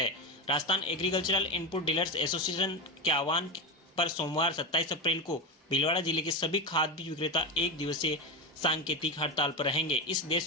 Rajasthan agricultural input dealers association के आह्वान पर सोमवार 27 अप्रैल को भीलवाड़ा जिले के सभी खाद बीज विक्रेता 1 दिवसीय सांकेतिक हड़ताल पर रहेंगे। इस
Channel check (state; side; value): normal; both; correlation 0.16